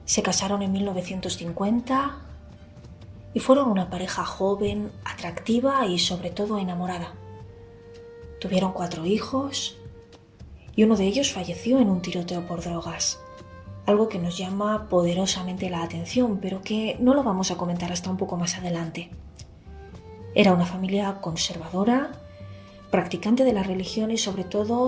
Se casaron en 1950 y fueron una pareja joven, atractiva y sobre todo enamorada. Tuvieron 4 hijos y uno de ellos falleció en un tiroteo por drogas, algo que nos llama poderosamente la atención, pero que no lo vamos a comentar hasta un poco más adelante. Era una familia conservadora, practicante de la religión y sobre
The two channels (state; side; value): identical; both; correlation 1.00